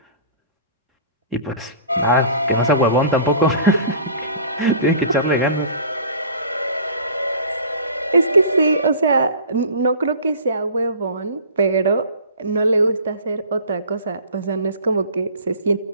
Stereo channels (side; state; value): both; inverted; correlation -0.43